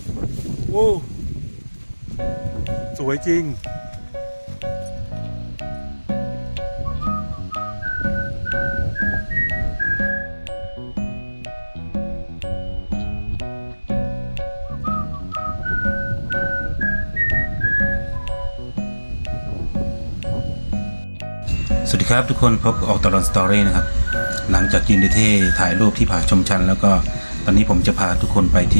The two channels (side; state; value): both; inverted; correlation -1.00